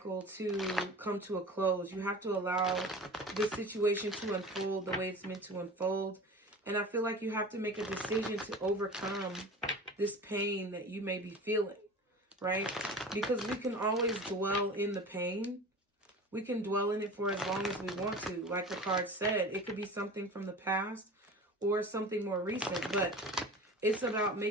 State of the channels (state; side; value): normal; both; correlation 0.36